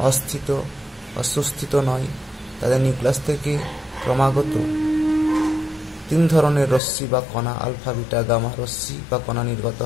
অস্থিত, সুস্থিত নয়। তাদের নিউক্লিয়াস থেকে ক্রমাগত 3 ধরনের রশ্মি বা কণা, আলফা, বিটা, গামা রশ্মি বা কণা নির্গত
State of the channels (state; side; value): drops out; right; at 6.8 s